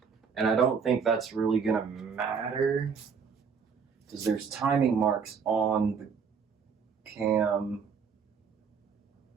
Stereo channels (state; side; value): quieter; left; 6.2 dB